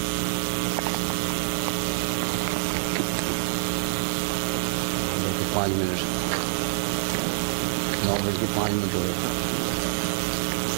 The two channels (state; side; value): silent; left; digital silence